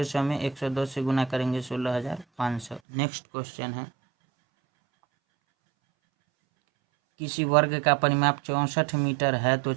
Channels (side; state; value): left; drops out; at 2.8 s